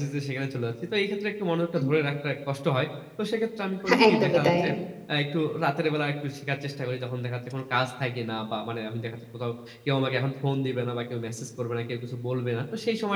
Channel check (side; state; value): both; identical; correlation 1.00